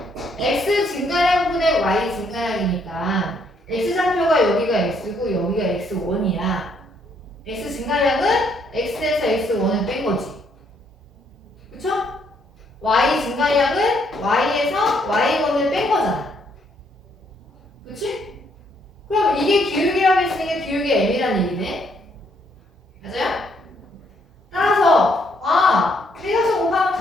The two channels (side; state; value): both; normal; correlation 0.70